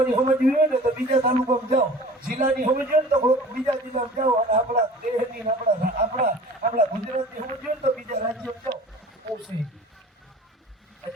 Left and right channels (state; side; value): normal; both; correlation 0.43